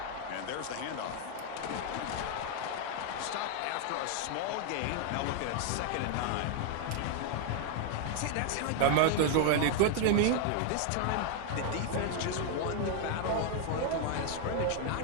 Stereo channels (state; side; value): different; both; correlation 0.00